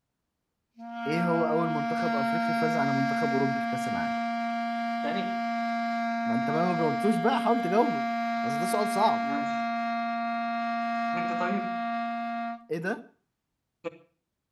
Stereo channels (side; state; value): both; identical; correlation 1.00